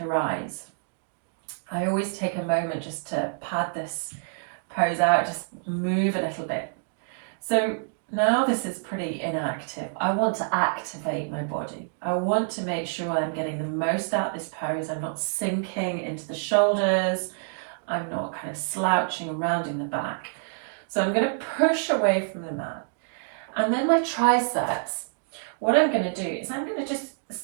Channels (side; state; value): left; silent; digital silence